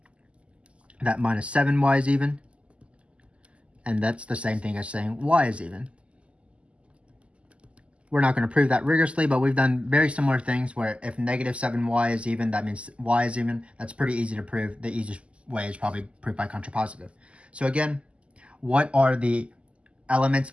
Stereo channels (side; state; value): left; late; 0.057 ms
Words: that minus 7y is even. And that's the same thing as saying y is even. We're not going to prove that rigorously, but we've done very similar things where if negative 7y is even, that means y is even. That's pretty easy to prove. The easiest way is probably proof by contrapositive. So again, what are the elements